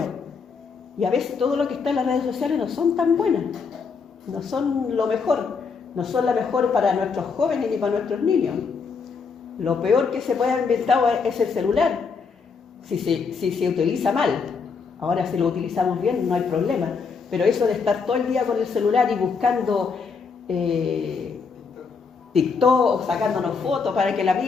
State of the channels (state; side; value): quieter; right; 5.3 dB